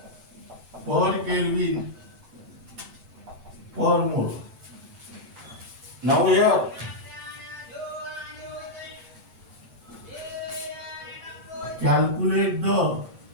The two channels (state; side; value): late; left; 7.8 ms